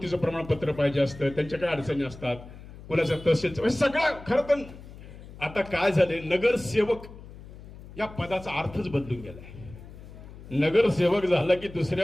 प्रमाणपत्र पाहिजे असतं, त्यांच्या काय अडचणी असतात, कोणाचं तहसीलचं, सगळं. खरं तर आता काय झाले, नगरसेवक या पदाचा अर्थच बदलून गेलाय. नगरसेवक झाला की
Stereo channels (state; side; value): noise; left; hum, 16 dB below the sound